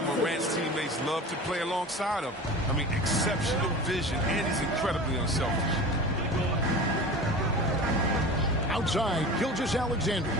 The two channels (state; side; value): normal; both; correlation 0.35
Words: Morant's teammates love to play alongside him. I mean, exceptional vision, and he's incredibly unselfish. Outside, Gilgeous-Alexander